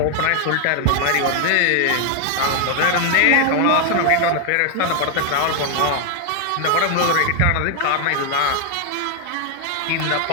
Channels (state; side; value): different; both; correlation 0.00